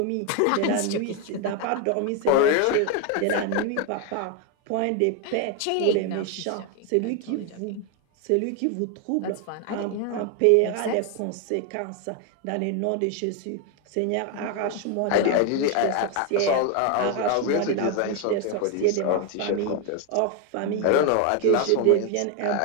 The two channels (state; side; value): different; both; correlation 0.01